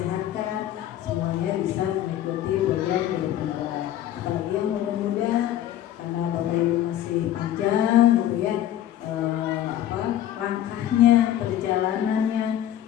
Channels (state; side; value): quieter; right; 11.9 dB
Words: semuanya bisa mengikuti program guru penggerak. Apalagi yang muda-muda, karena Bapak Ibu masih panjang gitu ya, langkahnya, perjalanannya.